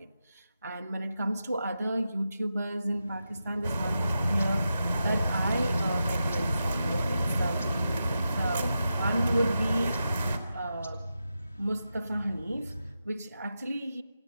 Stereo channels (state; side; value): inverted; both; correlation -0.89